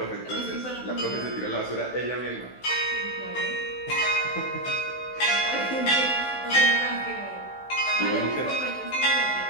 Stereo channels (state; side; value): late; right; 16 ms